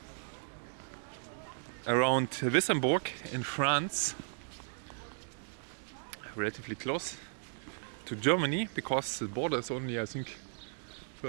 around Wissembourg in France, relatively close to Germany, because the border is only, I think,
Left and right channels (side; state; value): left; silent; digital silence